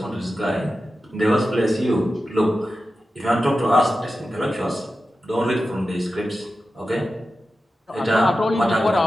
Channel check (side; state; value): both; normal; correlation 0.92